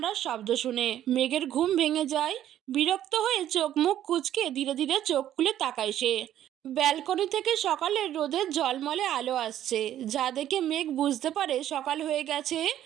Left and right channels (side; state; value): left; quieter; 11.7 dB